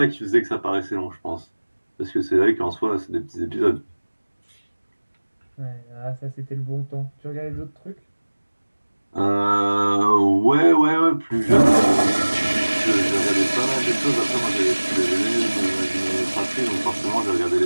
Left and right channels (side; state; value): both; inverted; correlation -1.00